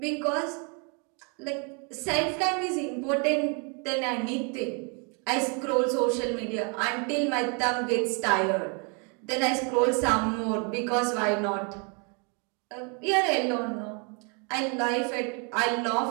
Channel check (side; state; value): left; quieter; 35.5 dB